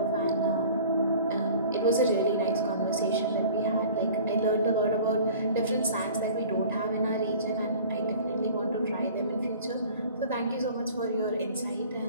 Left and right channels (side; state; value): both; inverted; correlation -0.45